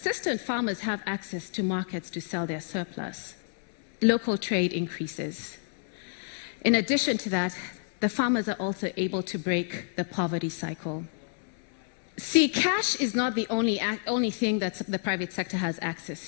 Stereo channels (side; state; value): right; silent; 59 dB below the other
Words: farmers have access to markets to sell their surplus, local trade increases. In addition to that, the farmers are also able to break the poverty cycle. See, cash is not the only thing that the private sector has